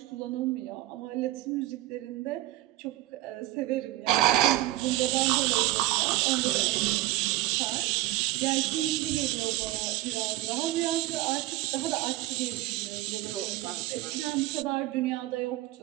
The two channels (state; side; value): quieter; left; 16.9 dB